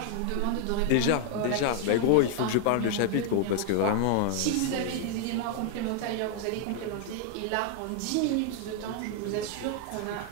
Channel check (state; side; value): different; both; correlation 0.00